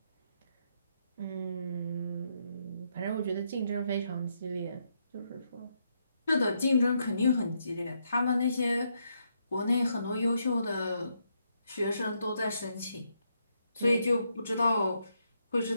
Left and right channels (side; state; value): both; inverted; correlation -0.78